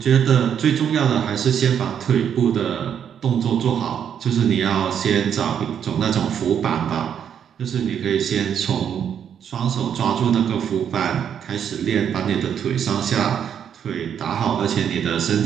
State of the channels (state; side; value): quieter; left; 8.5 dB